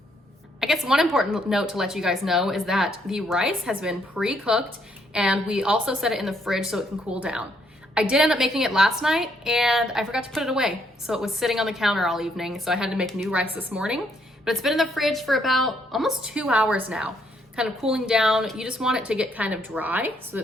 I guess one important note to let you guys know is that the rice has been pre-cooked, and we also set it in the fridge so it can cool down. I did end up making it last night, and I forgot to put it away, so it was sitting on the counter all evening, so I had to make new rice this morning, but it's been in the fridge for about almost 2 hours now, kind of cooling down. You just want it to get kind of dry so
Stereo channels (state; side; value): normal; both; correlation 0.71